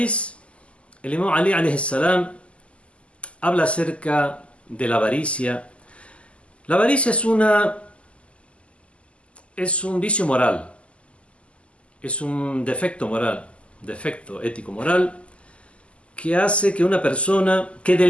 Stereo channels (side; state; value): right; late; 0.057 ms